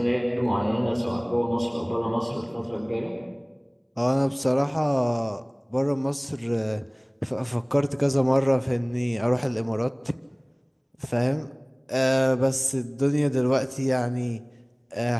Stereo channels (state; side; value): identical; both; correlation 1.00